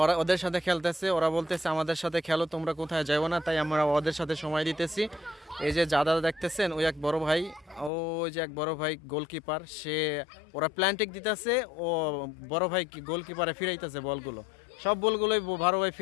ওরা ওদের সাথে খেলতেছে, ওরা বলতেছে আমাদের সাথে খেলো, তোমরা কোথায় যাবো না, তাই আমরা ওদের সাথে সময় দিতেছি। এই যে দাদা দেখতেছেন, ওই এক বড় ভাই, ওই যে এক বড় ভাই গোলকিপার, সে ওরা প্ল্যান্টিক দিতেছে, ও বড় ভাই গোলকিপারে ফিরাইতেছে বলগুলো, সব বলগুলোই বড় ভাই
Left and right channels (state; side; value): drops out; right; at 7.9 s